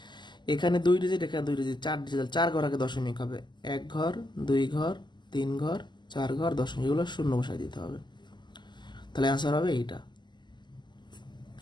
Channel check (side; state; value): right; late; 0.21 ms